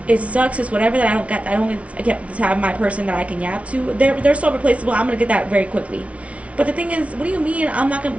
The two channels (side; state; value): left; late; 0.064 ms